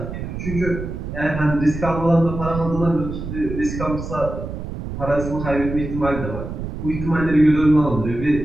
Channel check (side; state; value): right; noise; rumble, 7 dB below the sound